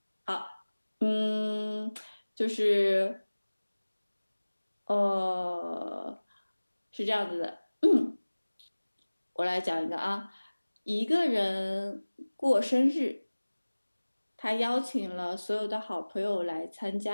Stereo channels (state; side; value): inverted; both; correlation -1.00